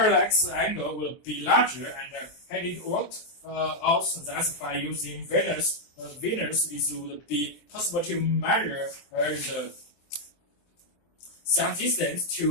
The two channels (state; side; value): late; right; 23 ms